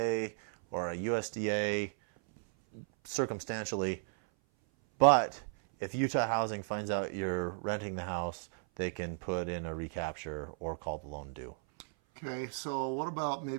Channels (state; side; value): silent; left; 55 dB below the other